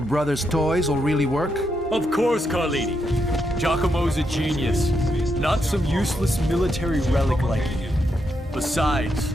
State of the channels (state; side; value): normal; both; correlation 0.81